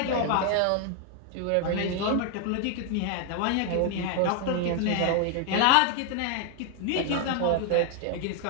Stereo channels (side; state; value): both; different; correlation 0.00